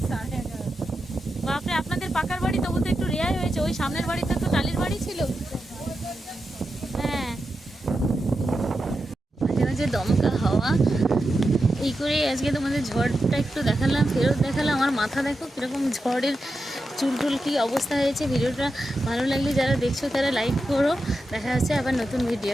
11:30। বাপরে, আপনাদের পাকার বাড়ি তবু তো একটু রেয়াই হয়েছে। ওই সামনের বাড়িতে তো টালির বাড়ি ছিল। হ্যাঁ, মাঝে মাঝে দমকা হাওয়া। এই করে আজকে তোমাদের ঝড়টা একটু দেখালাম, ফেরত দেখালাম। আমার মাথা দেখো কীরকম ঝড়ের চুলটুল কী অবস্থা হয়েছে। ভিডিওটা ভালো লাগলে যারা দেখছো তারা লাইক করো। দেখা যাচ্ছে আবার নতুন ভিডিও।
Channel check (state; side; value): normal; both; correlation 0.89